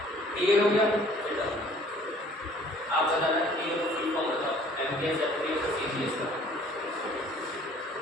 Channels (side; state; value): both; normal; correlation 0.55